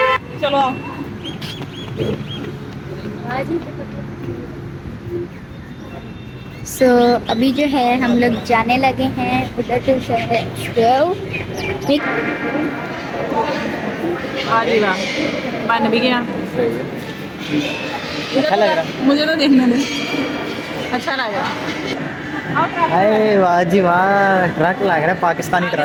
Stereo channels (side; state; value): both; identical; correlation 1.00